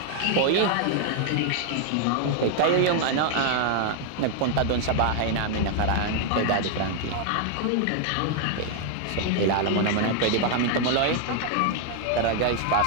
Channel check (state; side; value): different; both; correlation 0.00